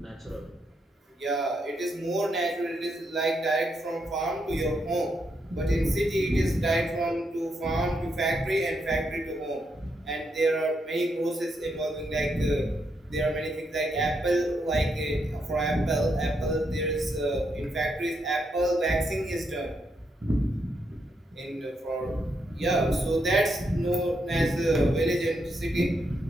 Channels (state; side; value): normal; both; correlation 0.80